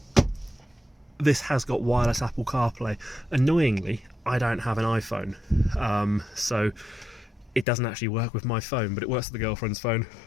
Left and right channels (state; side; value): drops out; right; at 7.7 s